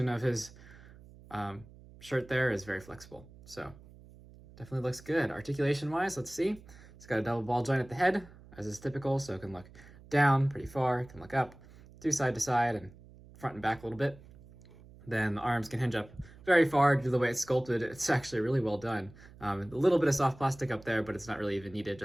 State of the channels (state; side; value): noise; right; hum, 21 dB below the sound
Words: of his shirt there is very flexible. So definitely looks good. Articulation-wise, let's see. It's got a double ball joint at the head, as is typical, so it can look down pretty far, it can look up, do side to side, and front and back a little bit. Then the arms can hinge up very far due to the way it's sculpted. It's actually really well done. A little bit of soft plastic up there, but it's not really even needed,